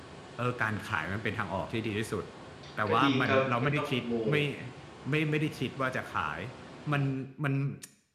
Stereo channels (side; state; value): both; identical; correlation 1.00